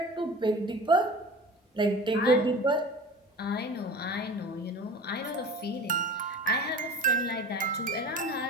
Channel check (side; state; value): both; normal; correlation 0.38